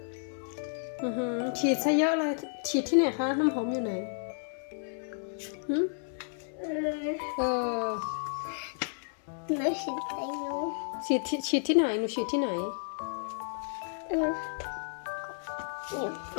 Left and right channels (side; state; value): right; silent; 57 dB below the other